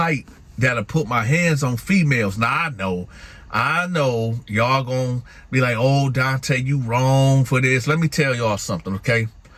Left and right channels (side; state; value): both; identical; correlation 1.00